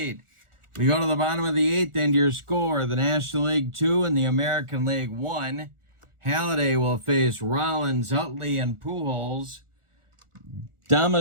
We go to the bottom of the 8th, and your score, the National League 2 and the American League 1. Halladay will face Rollins, Utley, and Pujols.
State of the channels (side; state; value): left; late; 1.4 ms